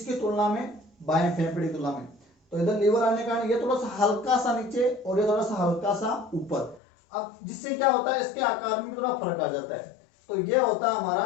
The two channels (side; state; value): right; drops out; at 6.8 s